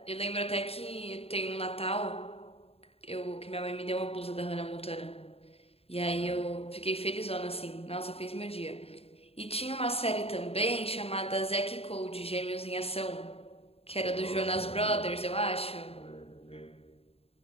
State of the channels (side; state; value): right; late; 0.29 ms